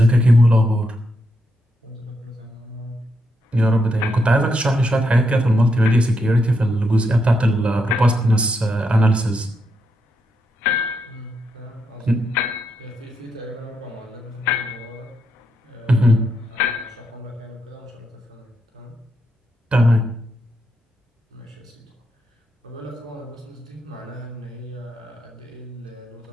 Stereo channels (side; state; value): both; normal; correlation 0.81